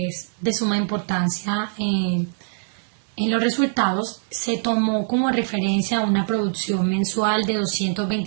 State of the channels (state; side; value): silent; left; digital silence